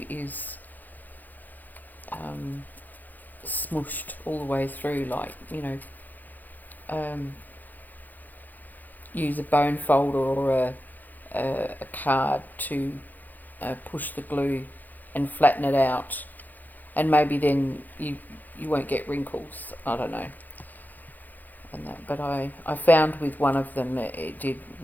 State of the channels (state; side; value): late; right; 0.084 ms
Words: is smooshed all the way through, like, use a bone folder or a card to push the glue and flatten it out, and maybe then you won't get wrinkles. I don't know. And that, but I found with one of them that it did